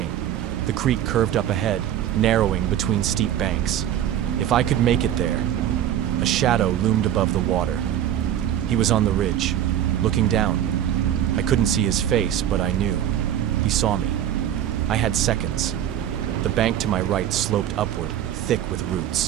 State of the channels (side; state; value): left; quieter; 11.0 dB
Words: The creek curved up ahead, narrowing between steep banks. If I could make it there. A shadow loomed above the water. He was on the ridge, looking down. I couldn't see his face, but I knew. He saw me. I had seconds. The bank to my right sloped upward, thick with